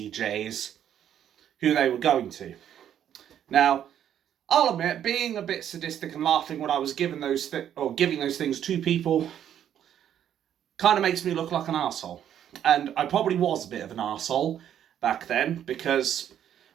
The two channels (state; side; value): quieter; left; 10.0 dB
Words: who they were going to. Now, I'll admit, being a bit sadistic and laughing when I was giving those things to people kind of makes me look like an arsehole. And I probably was a bit of an arsehole back then, because,